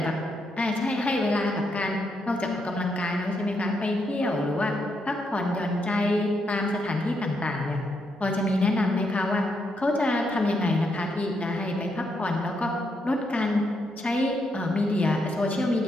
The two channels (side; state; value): both; normal; correlation 0.79